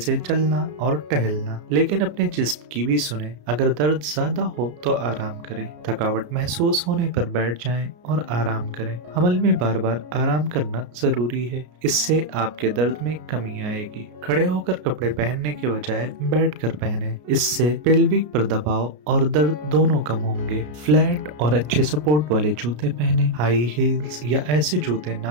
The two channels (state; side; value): late; left; 33 ms